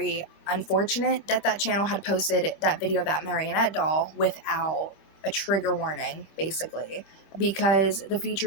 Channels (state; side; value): late; right; 25 ms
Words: unfortunate that that channel had posted that video of that marionette doll without a trigger warning, basically, because the